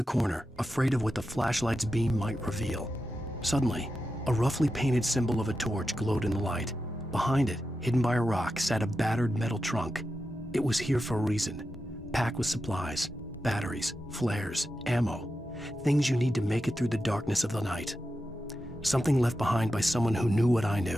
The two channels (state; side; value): normal; both; correlation 0.90